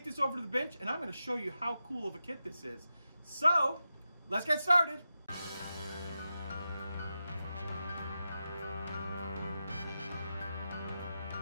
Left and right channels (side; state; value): both; inverted; correlation -0.89